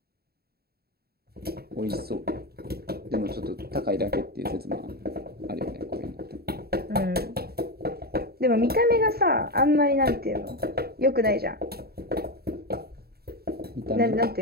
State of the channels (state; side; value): late; left; 0.46 ms